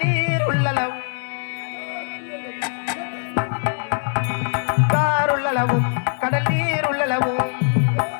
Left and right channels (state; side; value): silent; right; digital silence